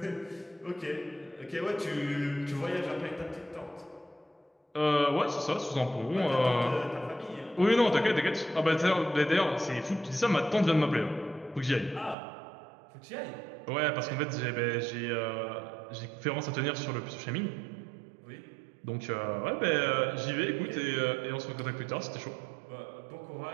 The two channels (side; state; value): left; drops out; at 12.2 s